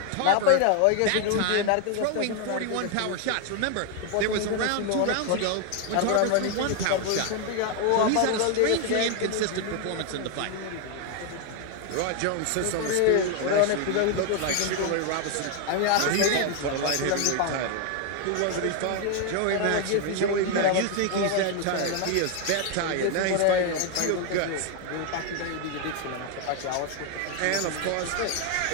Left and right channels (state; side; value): different; both; correlation 0.01